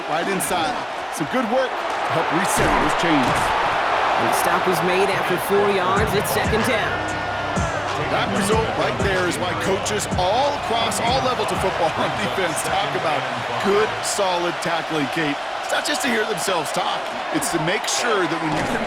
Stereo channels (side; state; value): both; identical; correlation 1.00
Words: right inside. Some good work to help reset those chains. And the stop was made after 4 yards. It's 2nd down. That result right there is why coaches all across all levels of football on defense talk about good, solid tackling, Kate. It's not just to hear themselves talk. It's to make sure that when you can